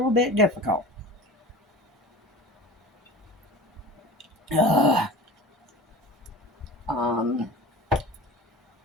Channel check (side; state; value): both; normal; correlation 0.37